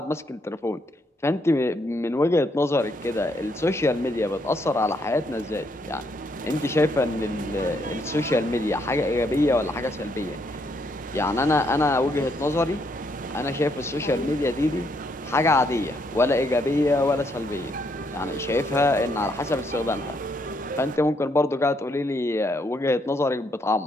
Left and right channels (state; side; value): normal; both; correlation 0.74